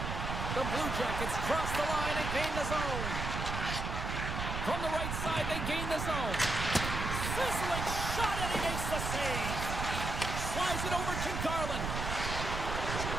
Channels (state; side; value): noise; right; rumble, 3 dB below the sound